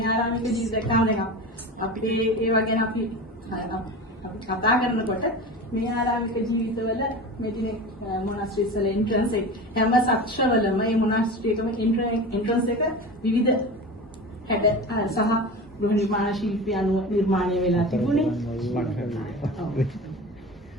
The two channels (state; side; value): normal; both; correlation 0.30